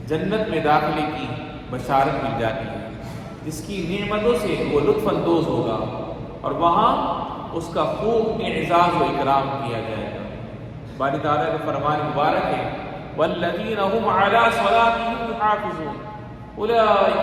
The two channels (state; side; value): identical; both; correlation 1.00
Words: جنت میں داخلے کی بشارت مل جاتی ہے، جس کی نعمتوں سے وہ لطف اندوز ہوگا اور وہاں اس کا خوب اعزاز و اکرام کیا جائے گا. باری تعالیٰ کا فرمان مبارک ہے: والذین هم علی صلاتهم یحافظون اولئک